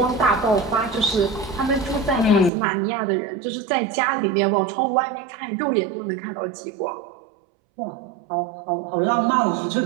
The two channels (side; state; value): left; drops out; at 2.5 s